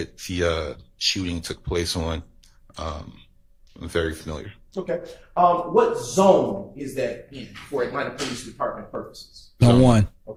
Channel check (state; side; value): identical; both; correlation 1.00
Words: the shooting took place on. I'm very familiar. Okay. What zone is that in for Atlanta Police Department purposes? Zone 1.